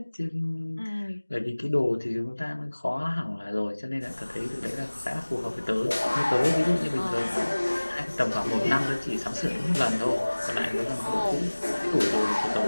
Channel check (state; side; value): inverted; both; correlation -1.00